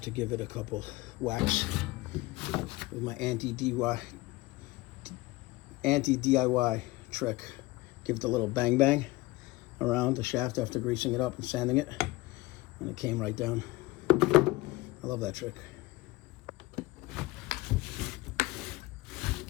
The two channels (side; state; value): right; quieter; 20.4 dB